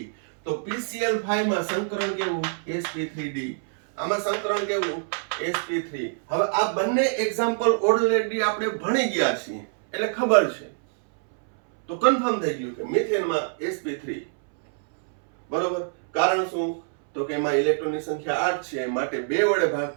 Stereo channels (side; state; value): left; silent; 62 dB below the other